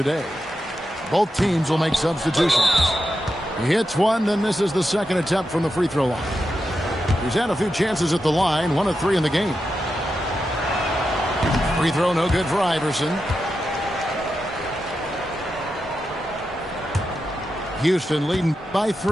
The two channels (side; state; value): both; normal; correlation 0.88